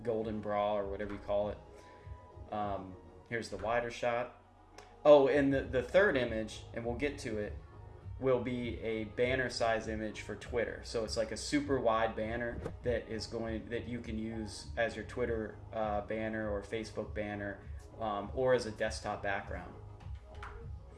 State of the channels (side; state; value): both; identical; correlation 1.00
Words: golden bra or whatever you call it. Here's the wider shot. Oh, and the third image, and we'll get to it, will be a banner size image for Twitter. So it's like a super wide banner that you can use as your Twitter banner or Facebook banner, or as a desktop background.